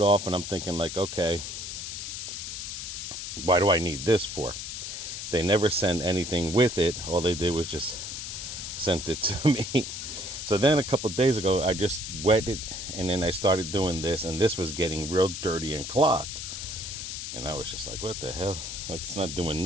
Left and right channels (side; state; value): left; noise; hiss, 6 dB below the sound